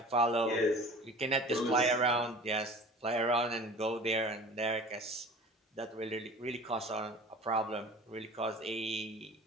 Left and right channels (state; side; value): normal; both; correlation 0.41